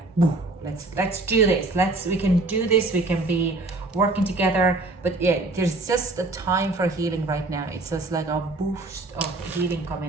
woo, let's do this, we can do this, we can be working together. But yeah, there's just a time for healing right now. It's just like a boost of healing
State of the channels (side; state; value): left; quieter; 3.1 dB